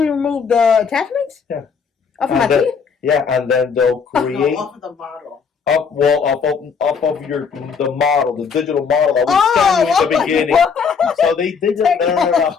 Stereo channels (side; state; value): right; quieter; 5.9 dB